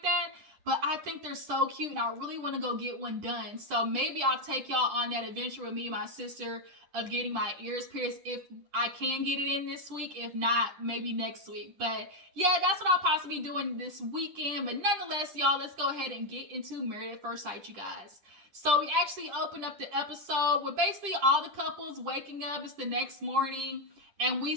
that. But I think they're so cute and I really want to go get one done. So maybe I'll take y'all on that adventure with me and my sister of getting my ears pierced if I can get it in this week. If not, maybe next week. But yeah, that's what I'll possibly be doing this weekend. But nonetheless, y'all, let's go ahead and get into Married at First Sight, you guys. So we actually opened up the episode with basically all the couples waking up. It's the next morning. And we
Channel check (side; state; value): left; late; 10 ms